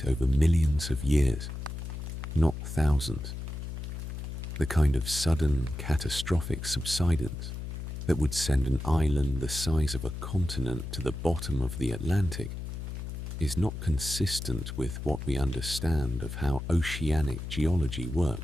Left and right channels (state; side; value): noise; left; hum, 7 dB below the sound